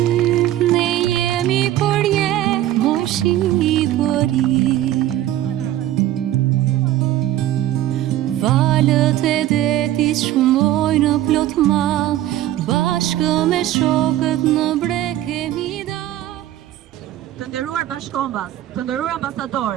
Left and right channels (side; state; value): left; quieter; 13.3 dB